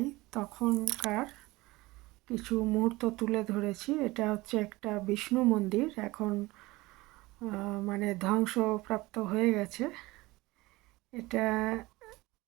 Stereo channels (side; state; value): left; quieter; 20.5 dB